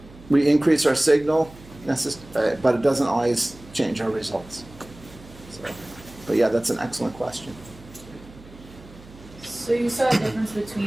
We increase our signal, but it doesn't always change our results. So, but yeah, that's an excellent question. So you saw a difference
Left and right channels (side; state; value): right; noise; hum, 21 dB below the sound